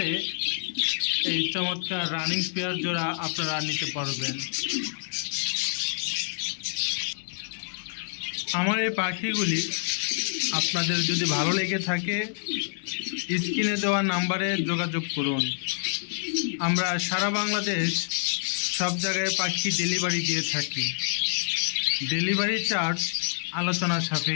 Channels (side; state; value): right; silent; digital silence